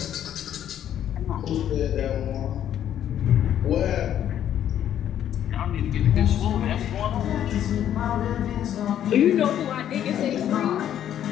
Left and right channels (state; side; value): quieter; right; 10.5 dB